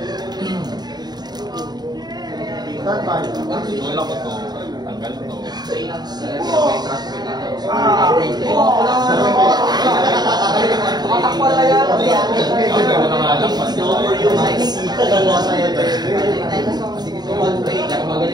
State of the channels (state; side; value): late; left; 0.20 ms